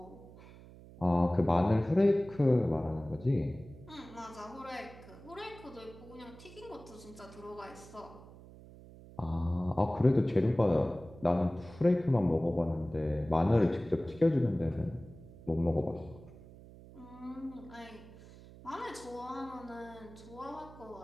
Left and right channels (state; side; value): noise; right; hum, 19 dB below the sound